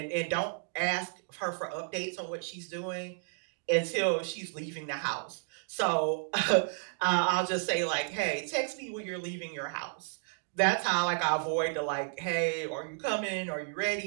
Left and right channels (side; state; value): left; silent; digital silence